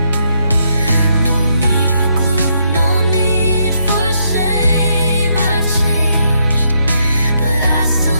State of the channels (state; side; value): inverted; both; correlation -0.76